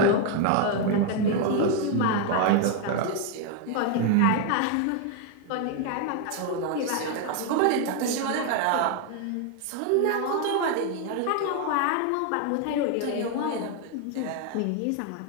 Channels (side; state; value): both; different; correlation 0.01